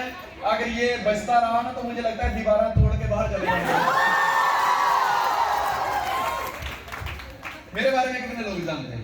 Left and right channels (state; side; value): identical; both; correlation 1.00